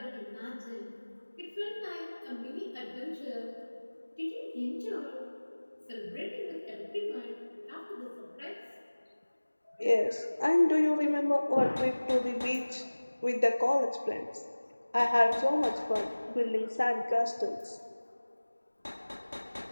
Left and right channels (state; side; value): inverted; both; correlation -1.00